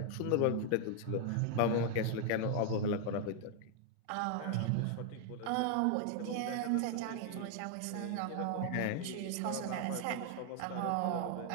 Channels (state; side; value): different; both; correlation 0.00